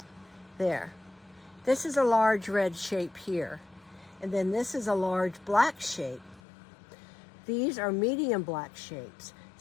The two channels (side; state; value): right; drops out; at 6.4 s